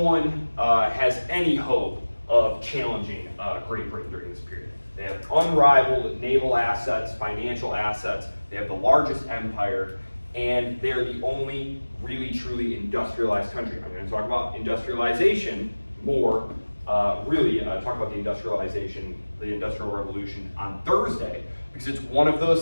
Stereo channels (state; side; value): inverted; both; correlation -1.00